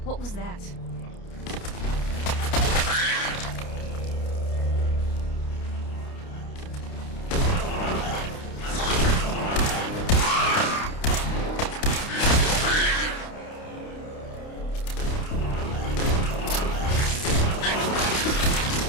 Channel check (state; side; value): late; right; 29 ms